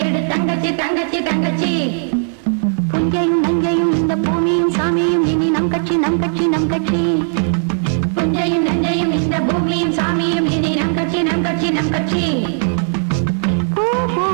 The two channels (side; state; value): left; silent; digital silence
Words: எடு தங்கச்சி தங்கச்சி தங்கச்சி. புஞ்சையும் நஞ்சையும் இந்த பூமியும் சாமியும் இனி நம் கட்சி நம் கட்சி நம் கட்சி. புஞ்சையும் நஞ்சையும் இந்த பூமியும் சாமியும் இனி நம் கட்சி நம் கட்சி நம் கட்சி. பூ